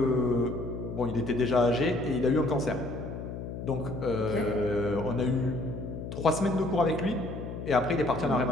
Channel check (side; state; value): left; noise; hum, 8 dB below the sound